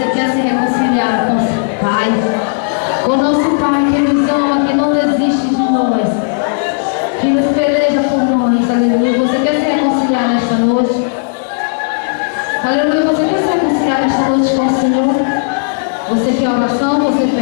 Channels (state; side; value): silent; right; digital silence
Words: quer se reconciliar com o Pai. Com o nosso Pai que nos ama, que não desiste de nós. Que nos peleja por nós. Aleluia. Você quer se reconciliar nesta noite? Aleluia. Você quer se reconciliar nesta noite com o Senhor? Você quer oração? Você